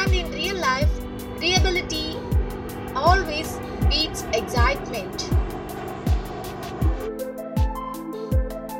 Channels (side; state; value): both; identical; correlation 1.00